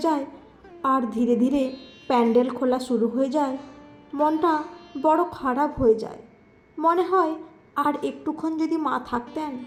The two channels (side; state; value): both; identical; correlation 1.00